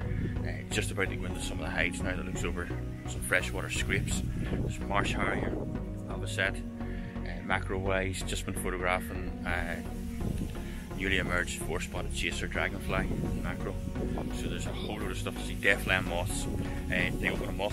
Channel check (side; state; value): both; identical; correlation 1.00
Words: Just about to go into some of the heights now that looks over some freshwater scrapes. There's marsh harrier, avocet. Macro-wise, just been photographing newly emerged 4-spotted chaser dragonfly macro. So there's a whole load of stuff to see. Deathland moths. They open a